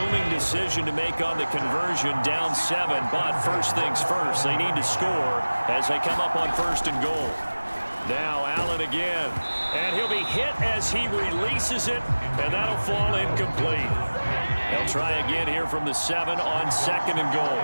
decision to make on the conversion, down 7. But first things first, they need to score as they come up on 1st and goal. Now Allen again. And he'll be hit as he releases it, and that'll fall incomplete. They'll try again here from the 7 on 2nd and goal.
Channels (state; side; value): inverted; both; correlation -1.00